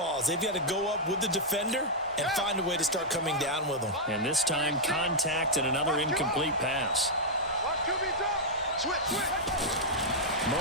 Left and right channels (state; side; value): normal; both; correlation -0.05